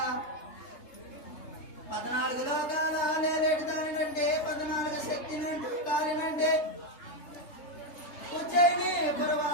14 లోకాల నేరేటి దానినంటే 14 శక్తినంటూ కాలినంటే ఉజ్జయిని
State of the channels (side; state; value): right; late; 3.3 ms